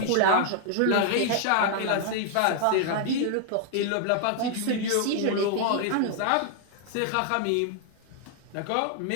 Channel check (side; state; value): both; different; correlation 0.00